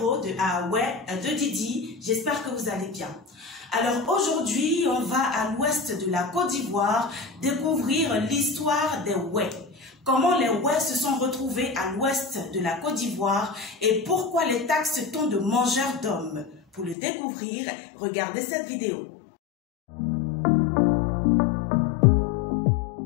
de Aoué de Didi. J'espère que vous allez bien. Alors aujourd'hui, on va à l'ouest de la Côte d'Ivoire découvrir l'histoire des Wè. Comment les Wè se sont retrouvés à l'ouest de la Côte d'Ivoire et pourquoi les taxe-t-on de mangeurs d'hommes. Pour le découvrir, regardez cette vidéo.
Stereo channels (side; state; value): right; drops out; at 16.9 s